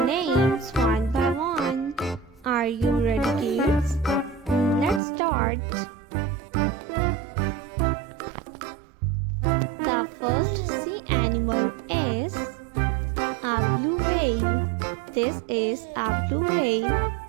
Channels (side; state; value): left; drops out; at 5.0 s